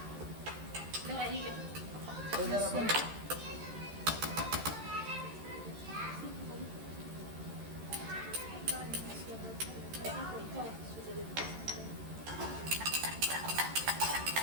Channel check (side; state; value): left; late; 13 ms